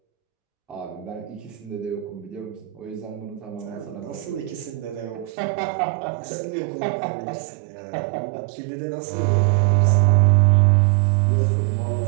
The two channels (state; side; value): drops out; left; at 5.4 s